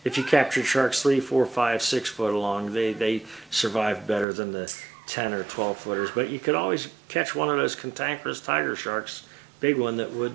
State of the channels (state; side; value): drops out; left; at 4.2 s